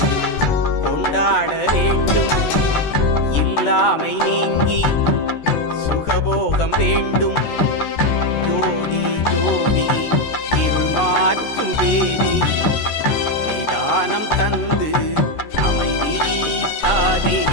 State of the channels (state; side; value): late; right; 14 ms